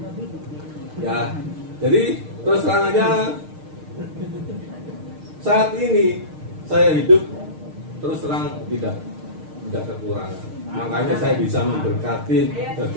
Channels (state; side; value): late; left; 6.5 ms